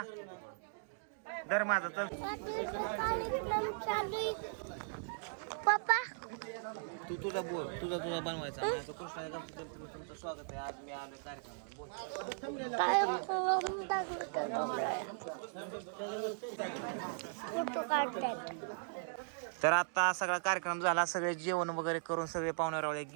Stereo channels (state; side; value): silent; left; digital silence